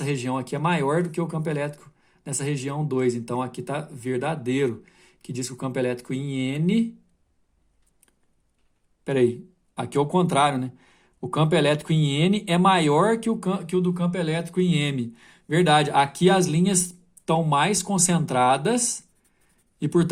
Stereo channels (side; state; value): both; identical; correlation 1.00